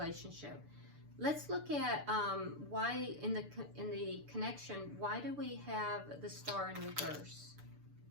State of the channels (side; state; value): left; late; 6.8 ms